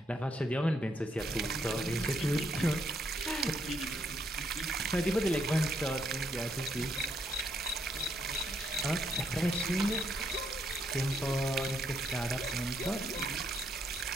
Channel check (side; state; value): both; normal; correlation 0.74